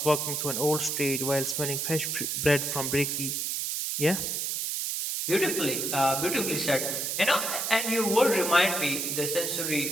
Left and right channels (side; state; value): right; noise; hiss, 1 dB below the sound